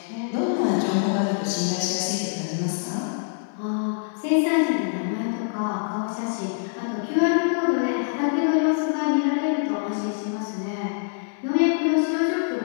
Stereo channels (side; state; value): right; silent; digital silence